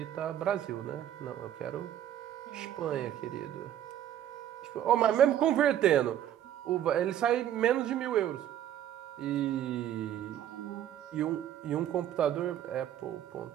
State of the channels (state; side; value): quieter; left; 11.0 dB